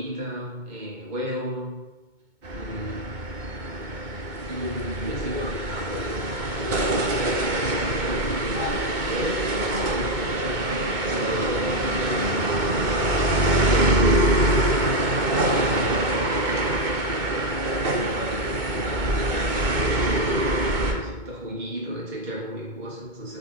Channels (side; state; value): left; late; 2.2 ms